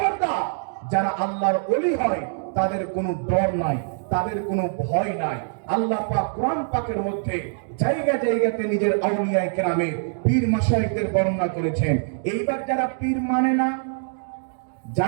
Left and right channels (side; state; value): left; silent; digital silence